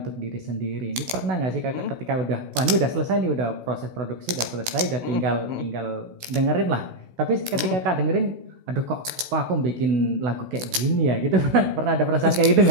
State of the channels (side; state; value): left; late; 16 ms